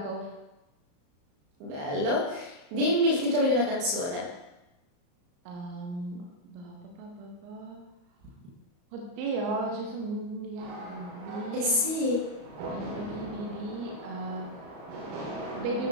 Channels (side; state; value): left; late; 34 ms